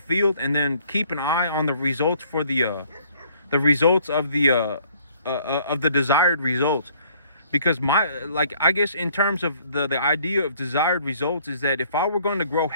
field, and then keep an eye on the results for the results of the desired results. Because I guess in terms of the idea of desired results is that if I were going to grow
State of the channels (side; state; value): both; inverted; correlation -0.60